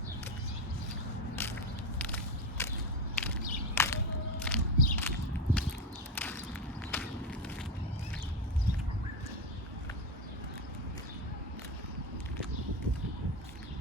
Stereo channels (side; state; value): both; normal; correlation 0.15